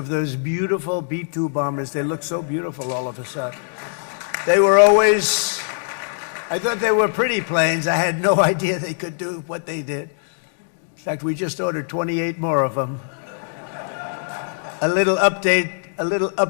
those beautiful B-2 bombers. They look so beautiful all of a sudden. They were always, I thought they were pretty planes. I had no idea they could do what they did. In fact, we just ordered 28 more of them. A little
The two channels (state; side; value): silent; right; digital silence